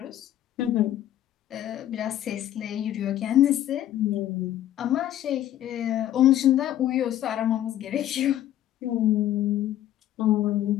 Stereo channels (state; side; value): quieter; right; 12.3 dB